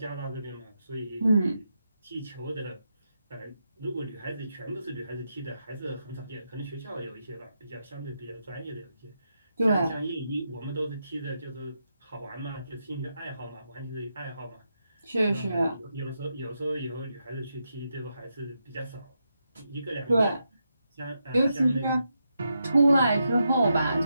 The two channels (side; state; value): both; inverted; correlation -0.84